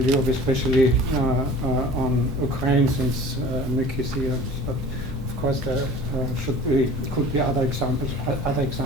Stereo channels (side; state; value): both; normal; correlation 0.43